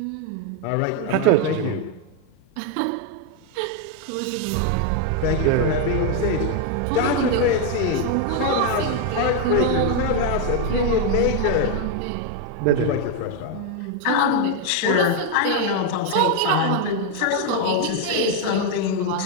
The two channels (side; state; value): both; different; correlation 0.01